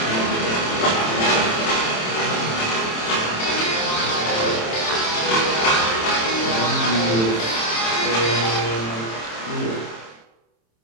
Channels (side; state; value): right; late; 27 ms